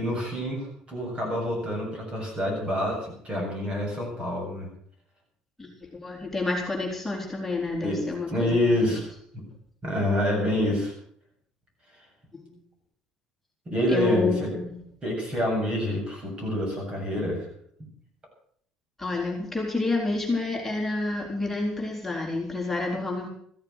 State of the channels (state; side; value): normal; both; correlation 0.66